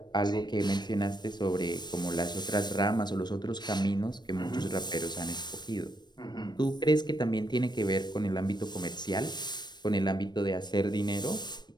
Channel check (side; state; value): right; late; 0.21 ms